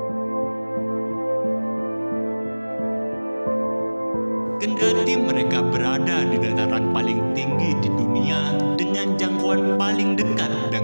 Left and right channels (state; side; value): inverted; both; correlation -1.00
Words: Kendati mereka berada di dataran paling tinggi di dunia dengan jangkauan paling dekat